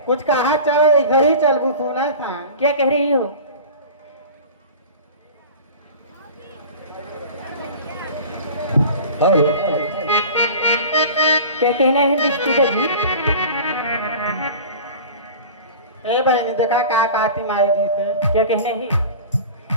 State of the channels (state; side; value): inverted; both; correlation -0.38